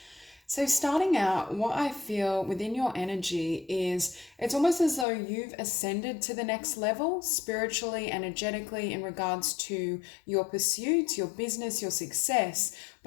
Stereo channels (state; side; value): drops out; right; at 5.1 s